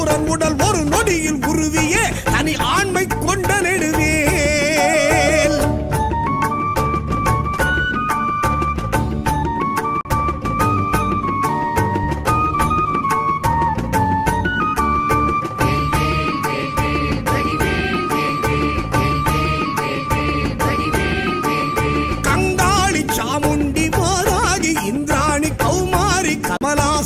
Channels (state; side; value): identical; both; correlation 1.00